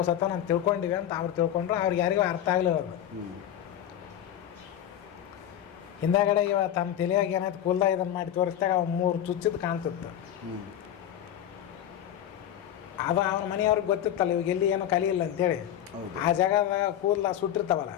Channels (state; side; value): quieter; right; 10.9 dB